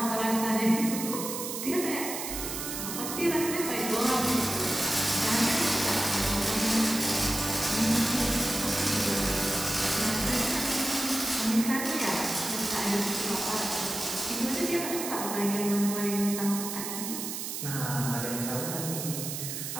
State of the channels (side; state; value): right; noise; hiss, 5 dB below the sound